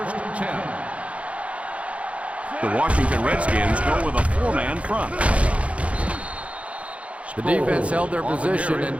and 10. The Washington Redskins go with a 4-man front. The defense held their position and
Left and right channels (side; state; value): left; late; 0.063 ms